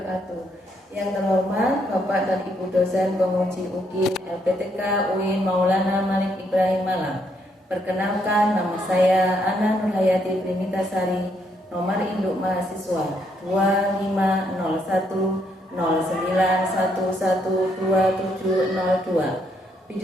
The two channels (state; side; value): normal; both; correlation 0.73